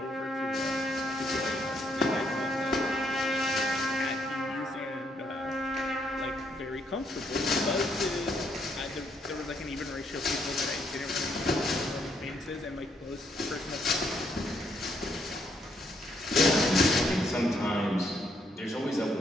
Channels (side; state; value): both; normal; correlation 0.73